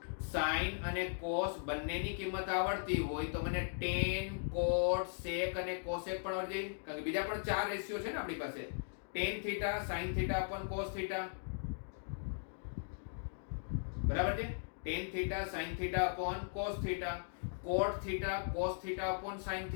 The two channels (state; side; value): silent; right; digital silence